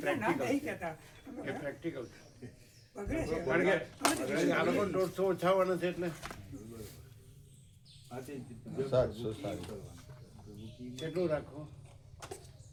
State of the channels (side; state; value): both; identical; correlation 1.00